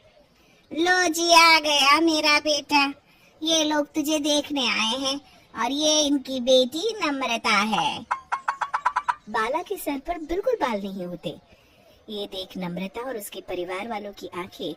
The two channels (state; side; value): identical; both; correlation 1.00